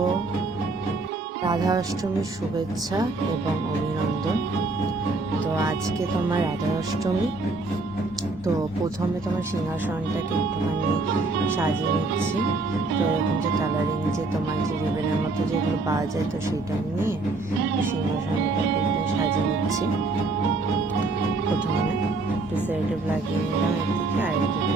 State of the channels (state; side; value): quieter; left; 3.3 dB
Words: রাধা অষ্টমীর শুভেচ্ছা এবং অভিনন্দন। তো আজকে তোমার রাধা অষ্টমী। তো প্রথমে তোমার সিংহাসনটাকে একটুখানি সাজিয়ে নিচ্ছি। তো এরকম যে কালারিং যে তোমার যে রিবেনের মতো যেগুলো পাওয়া যায়, তো সেটা নিয়ে সিংহাসনটাকে একটু সাজিয়ে নিচ্ছি। প্রথমে একটু সেরেটিভ লাগিয়ে নিলাম একদিকে, আর একদিকে